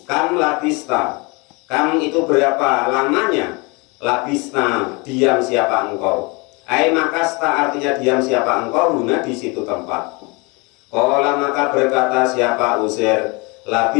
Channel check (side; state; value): right; quieter; 28.5 dB